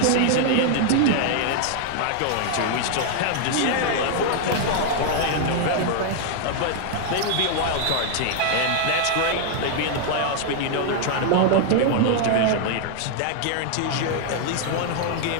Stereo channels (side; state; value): both; different; correlation 0.00